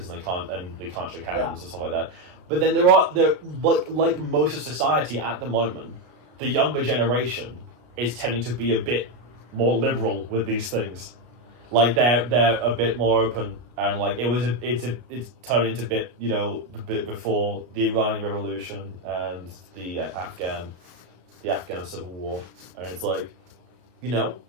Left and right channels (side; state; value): left; late; 33 ms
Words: and they can't shake hands and stuff like that. But then there like most of society at the moment, the younger generation is tending to be a bit more liberal with these things. Like they're a bit more open, and like it's turning into the bit before the Iranian Revolution and the Afghan Civil War, and it's like, I